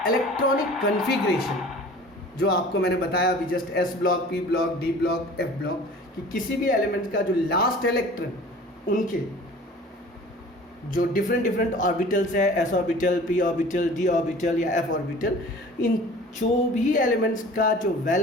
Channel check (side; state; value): both; normal; correlation 0.44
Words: इलेक्ट्रॉनिक कॉन्फ़िगरेशन जो आपको मैंने बताया अभी just S block, P block, D block, F block, कि किसी भी एलिमेंट का जो लास्ट इलेक्ट्रॉन उनके जो डिफरेंट ऑर्बिटल्स है, S orbital, P orbital, D orbital या एफ ऑर्बिटल, इन जो भी एलिमेंट्स का जो